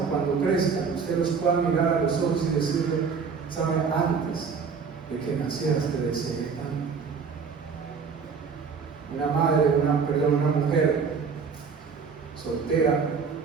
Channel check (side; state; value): left; quieter; 5.7 dB